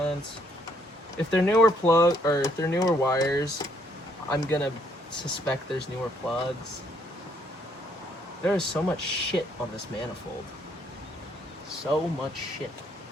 If they're newer if they're newer wires, I'm gonna suspect there's newer plugs. There is so much shit on this manifold. So much shit.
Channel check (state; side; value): normal; both; correlation 0.69